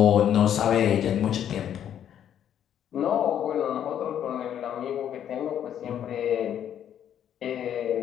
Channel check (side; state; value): right; quieter; 9.9 dB